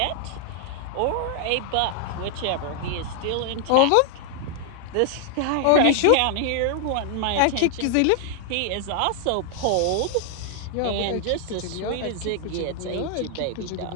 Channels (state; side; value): different; both; correlation 0.00